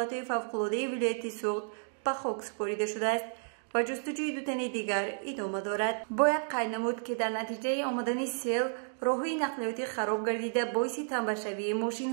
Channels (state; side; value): silent; left; digital silence